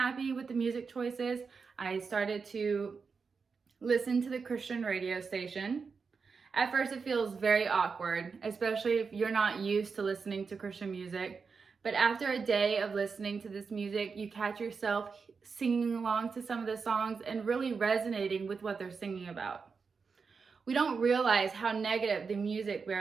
with the music choices, I started to listen to the Christian radio station. At first, it feels very awkward, especially if you're not used to listening to Christian music. But after a day of listening to this music, you catch yourself singing along to some of the songs and really resonating with what they're singing about. We don't realize how negative the music we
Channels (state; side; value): quieter; left; 5.2 dB